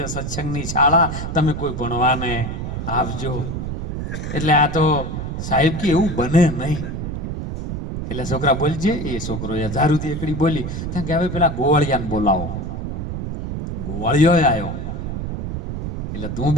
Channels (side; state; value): right; noise; rumble, 5 dB below the sound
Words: સત્સંગની શાળા, તમે કોઈ ભણવાને આવજો. એટલે આ તો સાહેબ કે એવું બને નહીં. એટલે છોકરા બોલજે. એ છોકરો 1000 સુધી એકડી બોલી કે હવે પેલા ગોવાળિયાને બોલાવો. ગોવાળિયો આવ્યો એટલે તું